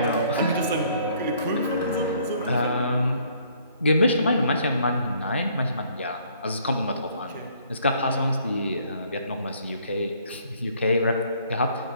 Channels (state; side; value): inverted; both; correlation -0.62